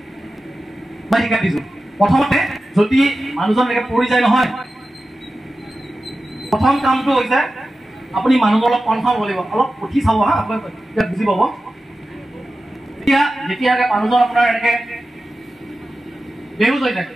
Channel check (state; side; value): normal; both; correlation 0.93